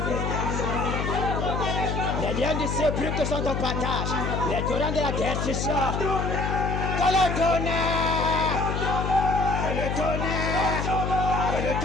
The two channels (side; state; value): left; noise; hum, 1 dB below the sound